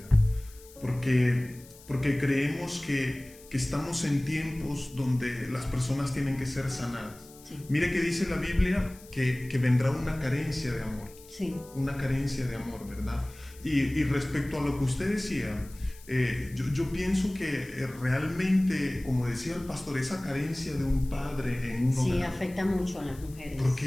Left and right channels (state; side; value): noise; left; hiss, 22 dB below the sound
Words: porque creemos que estamos en tiempos donde las personas tienen que ser sanadas. Sí. Mire que dice la Biblia que vendrá una carencia de amor, una carencia de amor, ¿verdad? Y respecto a lo que usted decía, yo pienso que realmente, como decía el pastor, esa carencia de un padre en un hogar, sí, afecta mucho a las mujeres.